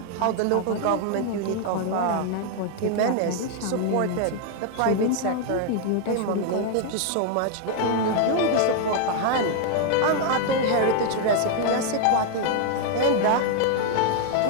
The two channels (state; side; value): different; both; correlation 0.00